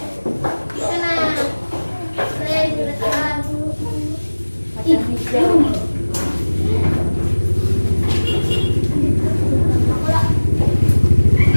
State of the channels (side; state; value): both; inverted; correlation -1.00